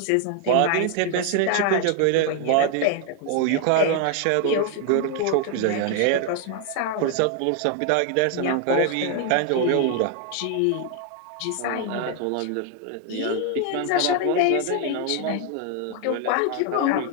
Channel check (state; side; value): different; both; correlation 0.01